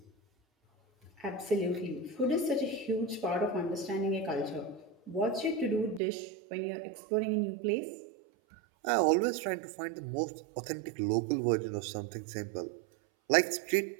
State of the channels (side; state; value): left; drops out; at 6.0 s